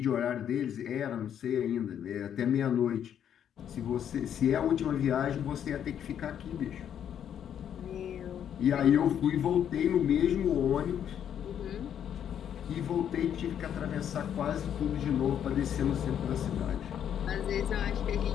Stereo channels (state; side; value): quieter; right; 9.3 dB